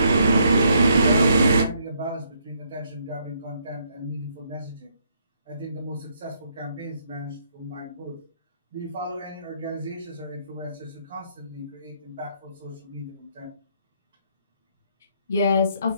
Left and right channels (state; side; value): inverted; both; correlation -0.71